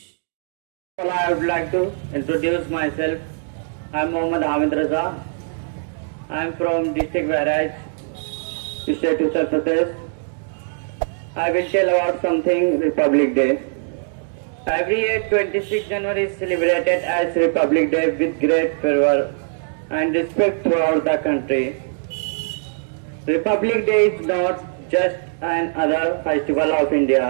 Well, I would like to introduce myself. I'm Mohammad Hamid Raza. I'm from district Bahraj, state Uttar Pradesh. I will tell about something Republic Day. Every year 26 January is celebrated as Republic Day with great fervor and respect throughout the country. Republic Day is not just another festival of India.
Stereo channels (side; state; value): left; silent; digital silence